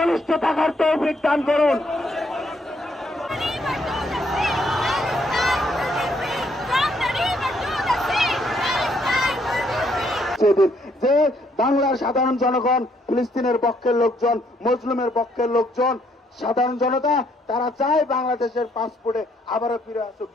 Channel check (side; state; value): both; normal; correlation 0.70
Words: থাকার তৌফিক দান করুন। যে বাংলার সাধারণ জনগণ, ফিলিস্তিনের পক্ষের লোকজন, মুসলিমের পক্ষের লোকজন, সাধারণ জনতা তারা চায় বাংলাদেশের পাসপোর্টে আবারও ফিরে আসুক।